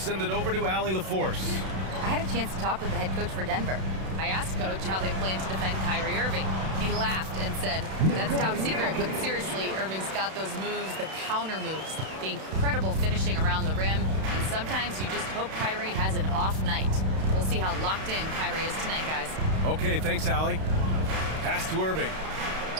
it over to Allie LaForce. I had a chance to talk with the head coach for Denver. I asked Coach how they plan to defend Kyrie Irving. He laughed and said, that's top secret, but seriously, Irving's got those moves, the counter moves, the incredible finishing around the rim, and sometimes you just hope Kyrie has an off night. We'll see how locked in Kyrie is tonight, guys. Okay, thanks, Allie. Pass to Irving.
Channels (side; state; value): left; late; 32 ms